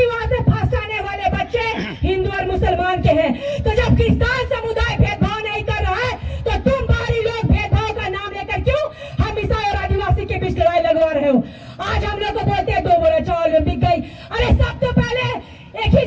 वहाँ से फर्स्ट आने वाले बच्चे हिंदू और मुसलमान के हैं। तो जब क्रिश्चियन समुदाय भेदभाव नहीं कर रहा है तो तुम बाहरी लोग भेदभाव का नाम लेकर क्यों हम ईसाई और आदिवासी के बीच लड़ाई लगवा रहे हो। आज हम लोग को बोलते हैं 2 बोरा चावल में बिक गई। अरे सब तो पहले एक ही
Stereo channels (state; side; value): identical; both; correlation 1.00